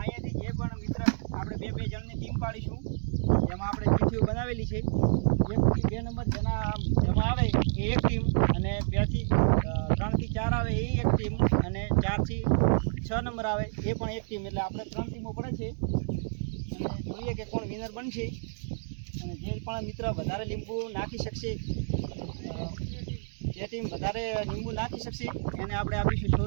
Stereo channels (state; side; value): silent; left; digital silence